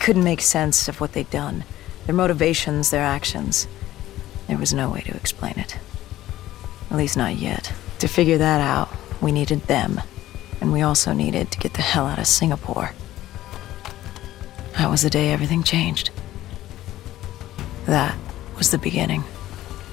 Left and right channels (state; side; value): quieter; right; 14.5 dB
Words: make sense of what they'd done. Their motivations, their actions. There was no way to explain it. At least not yet. To figure that out, we needed them. And we also needed to get the hell out of Singapore. That was the day everything changed. That was the beginning.